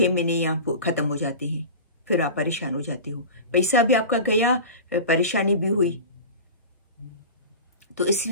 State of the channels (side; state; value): both; inverted; correlation -0.33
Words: महीने यहाँ ख़त्म हो जाते हैं, फिर आप परेशान हो जाते हो, पैसा भी आपका गया, परेशानी भी हुई। तो